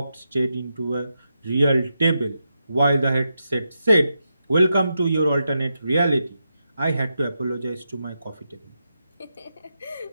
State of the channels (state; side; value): inverted; both; correlation -0.86